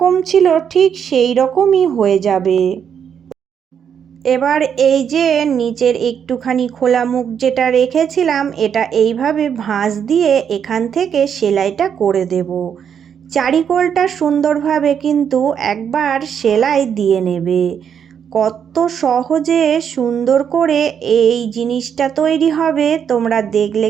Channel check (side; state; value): left; quieter; 7.9 dB